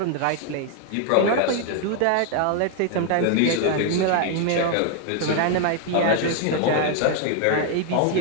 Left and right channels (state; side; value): different; both; correlation 0.00